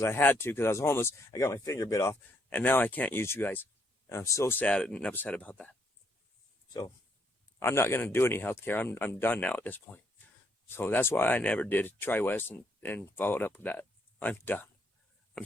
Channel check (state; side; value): normal; both; correlation 0.72